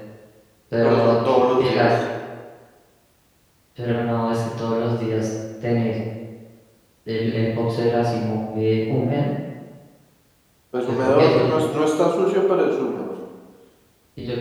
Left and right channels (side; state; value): both; identical; correlation 1.00